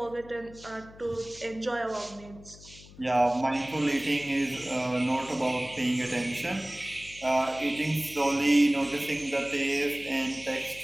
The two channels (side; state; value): left; noise; hum, 20 dB below the sound